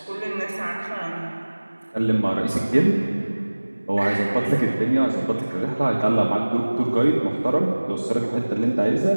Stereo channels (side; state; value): both; inverted; correlation -1.00